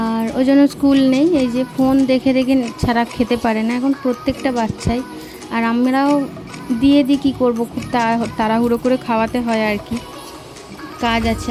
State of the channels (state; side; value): identical; both; correlation 1.00